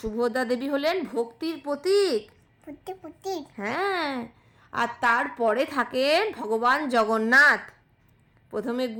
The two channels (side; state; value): both; identical; correlation 1.00